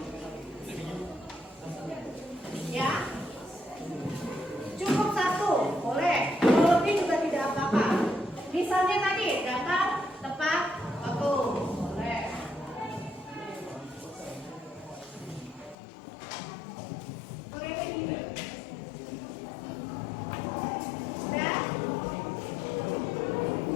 Ya, cukup satu, boleh. Kalau lebih juga tidak apa-apa. Misalnya tadi datang tepat waktu, boleh. Oke, sudah.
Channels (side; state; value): right; drops out; at 15.8 s